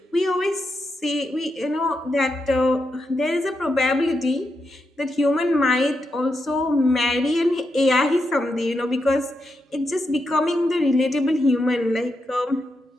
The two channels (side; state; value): both; normal; correlation 0.85